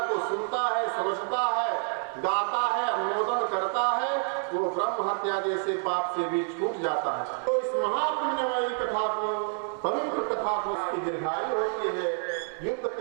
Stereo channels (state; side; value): silent; left; 55 dB below the other